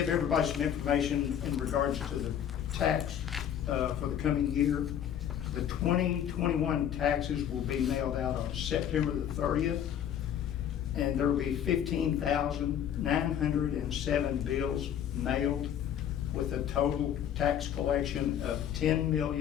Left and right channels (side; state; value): right; quieter; 9.6 dB